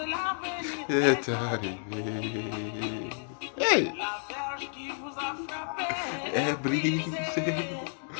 Est arrivée. Hey! Est brisée.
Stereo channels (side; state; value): right; silent; 57 dB below the other